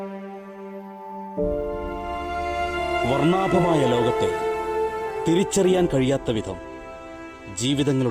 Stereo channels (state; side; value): identical; both; correlation 1.00